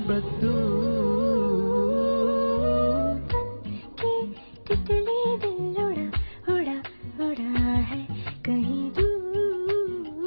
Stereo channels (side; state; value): both; inverted; correlation -1.00